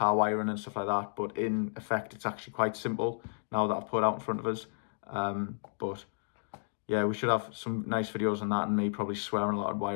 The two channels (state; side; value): silent; right; digital silence